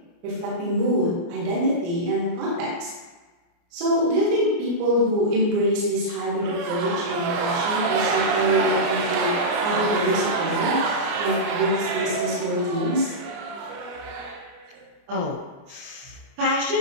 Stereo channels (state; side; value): late; left; 29 ms